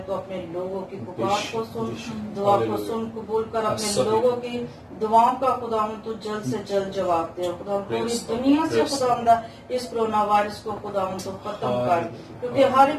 तो अपने लोगों की पुकार को सुन, दुआ को सुन, कबूल कर अपने लोगों की दुआओं का खुदावंद तू जल्द से जल्द जवाब दे. खुदावंद पूरी दुनिया से खुदावंदा इस कोरोना वायरस को खुदावंद तो खत्म कर, क्योंकि हर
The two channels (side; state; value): both; identical; correlation 1.00